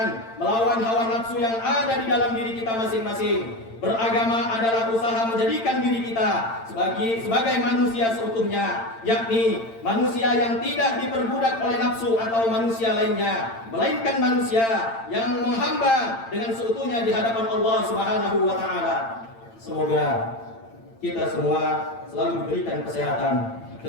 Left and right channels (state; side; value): late; right; 8.9 ms